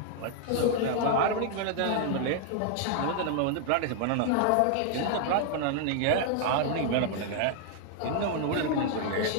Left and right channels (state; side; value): different; both; correlation 0.00